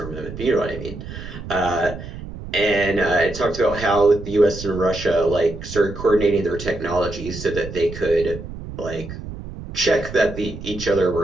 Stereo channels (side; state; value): right; noise; rumble, 11 dB below the sound